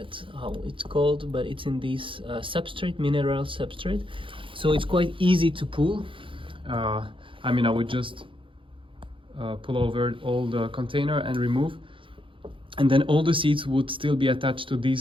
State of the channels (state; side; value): late; left; 0.25 ms